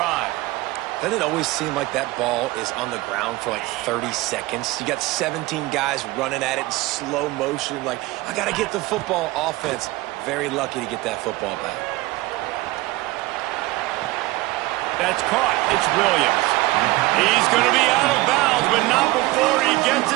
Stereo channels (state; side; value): quieter; left; 19.3 dB